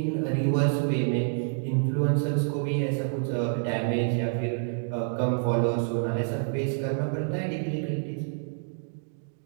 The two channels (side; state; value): left; silent; digital silence